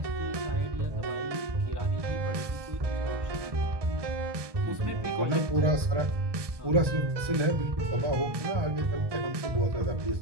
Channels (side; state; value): left; late; 1.2 ms